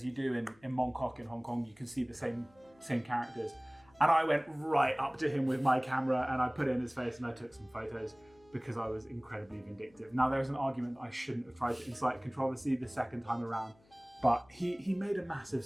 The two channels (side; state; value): left; noise; hum, 30 dB below the sound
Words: you do in Mong Kok in Hong Kong. You can see the same characters. And I went right up to him with my camera and I put it in his face and I took some photos because I was incredibly vindictive. Now, there's an argument that I shouldn't have tried to incite controversy the second time around, but he made a massive